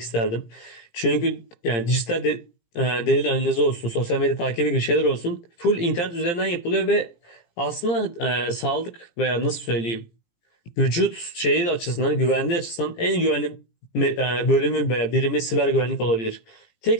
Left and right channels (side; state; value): right; late; 17 ms